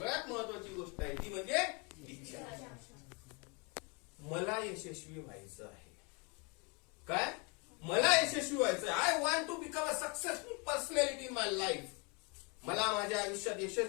महत्वाची गोष्ट आहे ती म्हणजे इच्छा. मला यशस्वी व्हायचं आहे. काय? मला यशस्वी व्हायचं आहे. I want to become a successful personality in my life. मला माझ्या आयुष्यात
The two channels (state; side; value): quieter; right; 31.8 dB